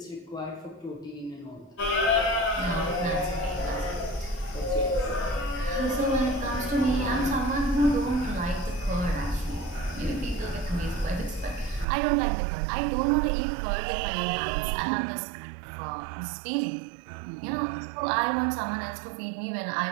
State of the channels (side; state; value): left; drops out; at 11.9 s